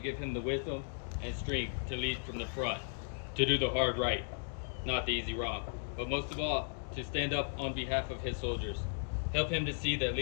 him the wisdom and strength to lead from the front, to do the hard right, not the easy wrong, but most of all, to stand up on behalf of his soldiers. Help him to see that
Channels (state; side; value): silent; right; digital silence